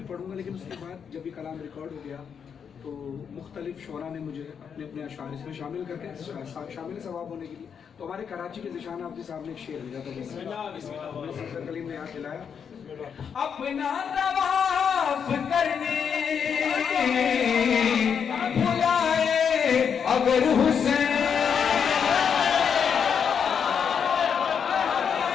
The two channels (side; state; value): right; quieter; 7.1 dB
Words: पढ़ूंगा। लेकिन उसके बाद जब ये कलाम रिकॉर्ड हो गया तो मुख्तलिफ शोरा ने मुझे अपने अपने अशार इसमें शामिल करके शामिल सवाब होने के लिए, तो हमारे कराची के ज़िशान आबदी साहब ने एक शेर लिया था, सफदर कलीम ने याद दिलाया। अपना तवाफ करने बुलाए अगर हुसैन,